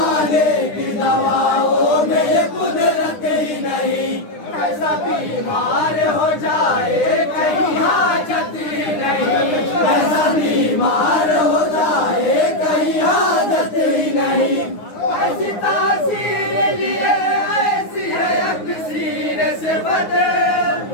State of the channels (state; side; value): late; right; 9.7 ms